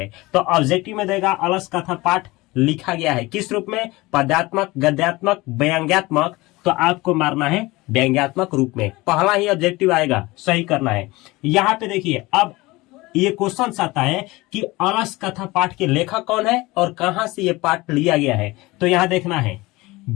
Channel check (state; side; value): quieter; right; 21.2 dB